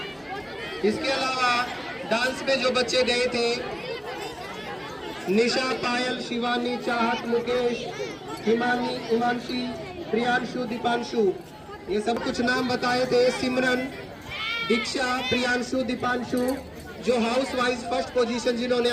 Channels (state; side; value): identical; both; correlation 1.00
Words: इसके अलावा डांस में जो बच्चे गए थे, निशा, पायल, शिवानी, चाहत, मुकेश, हिमानी, हिमांशी, प्रियांशु, दीपांशु, ये सब कुछ नाम बताए थे। सिमरन, दीक्षा, प्रियांशु, दीपांशु, जो हाउस वाइज फर्स्ट पोजीशन जिन्होंने